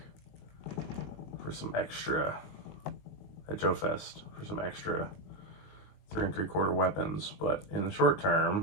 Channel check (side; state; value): right; late; 20 ms